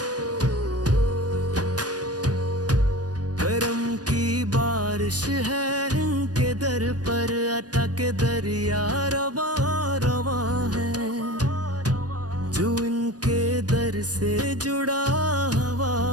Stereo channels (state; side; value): late; left; 0.69 ms